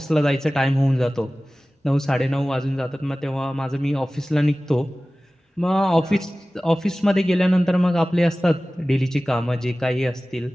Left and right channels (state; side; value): normal; both; correlation 0.97